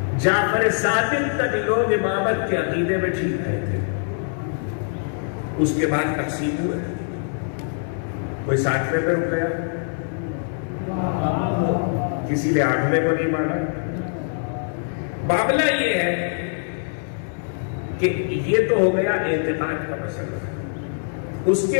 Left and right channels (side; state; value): right; silent; digital silence